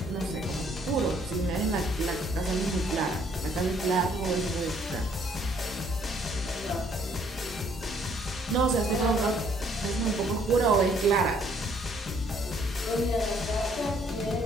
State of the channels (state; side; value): normal; both; correlation 0.64